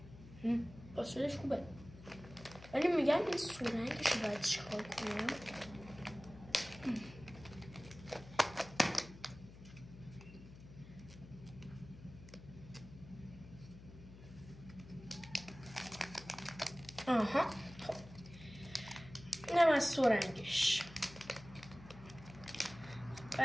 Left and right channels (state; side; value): noise; left; hum, 17 dB below the sound